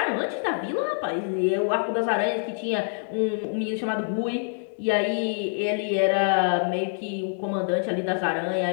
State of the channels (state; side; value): silent; right; digital silence